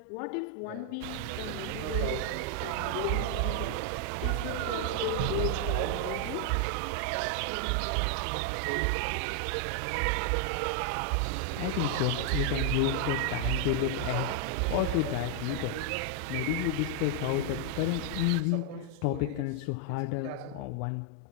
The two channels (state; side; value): different; both; correlation 0.00